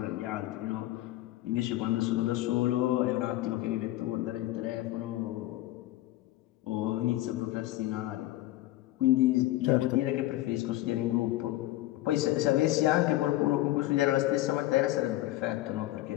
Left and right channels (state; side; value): quieter; right; 16.1 dB